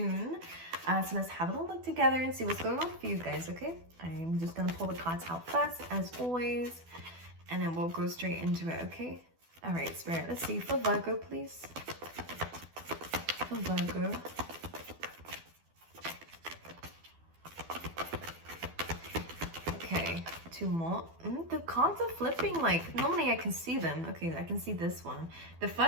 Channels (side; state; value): left; late; 12 ms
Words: So let's have a little look together and see what's going on for you guys, okay? I'm just going to pull the cards out first, as always, and then we'll go straight into it, okay? All right, Spirit, let's see. For Virgo, please. For Virgo. Okay. Two more. The cards are flipping like normally I can see them. Okay, I can see this one. The